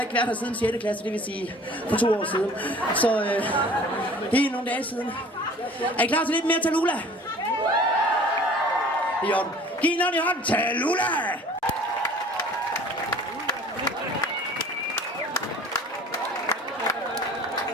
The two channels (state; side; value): normal; both; correlation 0.48